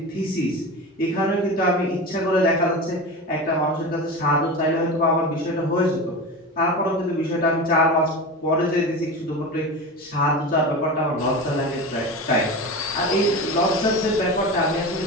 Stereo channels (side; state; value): both; normal; correlation 0.27